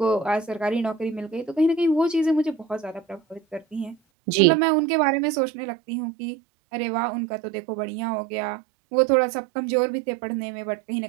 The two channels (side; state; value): left; drops out; at 4.0 s